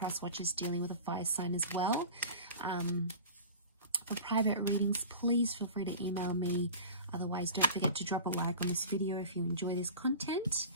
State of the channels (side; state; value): both; inverted; correlation -0.36